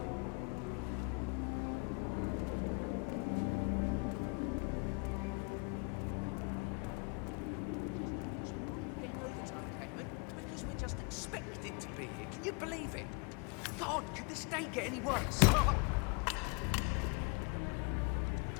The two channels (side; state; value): right; quieter; 33.6 dB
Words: We're just expected to be here. Can you believe it? God, could this day get any worse?